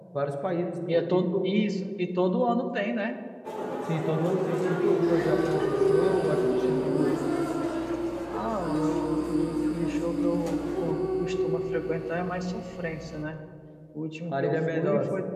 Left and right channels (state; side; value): identical; both; correlation 1.00